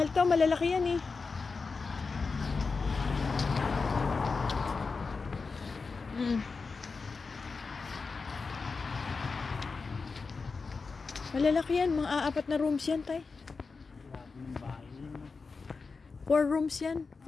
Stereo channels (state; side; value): quieter; right; 4.5 dB